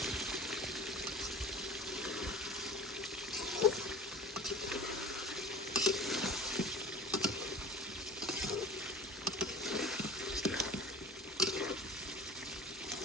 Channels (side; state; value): both; normal; correlation 0.40